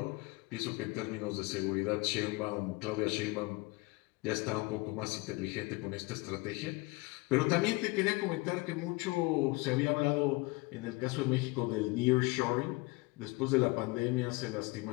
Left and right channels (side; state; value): right; quieter; 24.8 dB